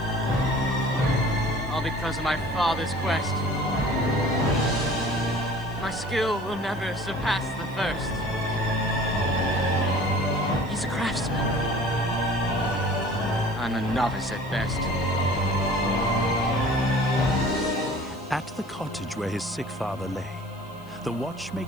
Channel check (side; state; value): right; noise; hiss, 28 dB below the sound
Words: all because of my father's quest. My skill will never surpass the first. He's a craftsman. I'm a novice at best. At the cottage where his sick father lay, the